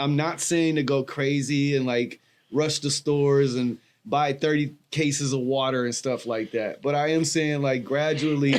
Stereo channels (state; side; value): identical; both; correlation 1.00